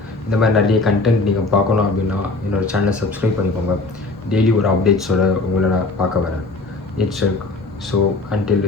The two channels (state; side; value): quieter; right; 3.3 dB